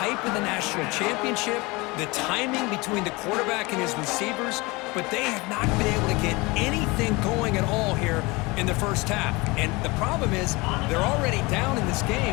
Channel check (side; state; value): right; quieter; 24.4 dB